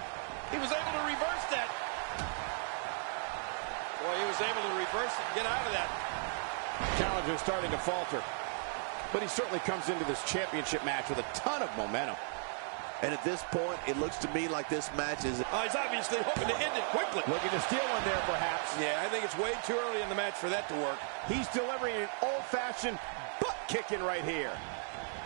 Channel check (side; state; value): left; silent; 54 dB below the other